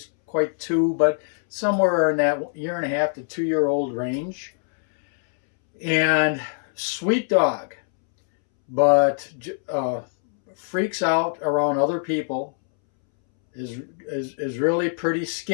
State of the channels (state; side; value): silent; right; 63 dB below the other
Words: quite two, but somewhere in that year and a half to 2 year old range. And sweet dog, but freaks out around other people. Is really pretty